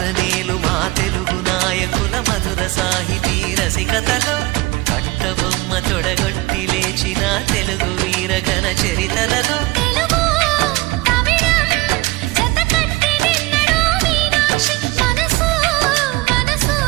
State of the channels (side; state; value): left; quieter; 20.9 dB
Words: నేలు మా తెలుగు నాయకుల మధుర సాహితీ రసికతలో కట్టబొమ్మ తొడగొట్టి లేచిన తెలుగు వీర ఘన చరితలలో